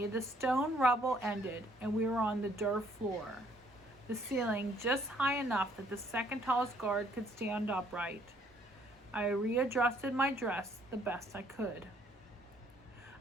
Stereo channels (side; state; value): both; normal; correlation 0.64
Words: the stone rubble ended and we were on the dirt floor. The ceiling just high enough that the second tallest guard could stand upright. I readjusted my dress the best I could.